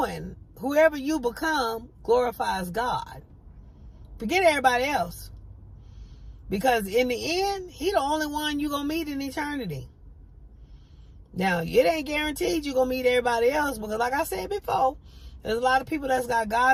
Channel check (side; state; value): both; identical; correlation 1.00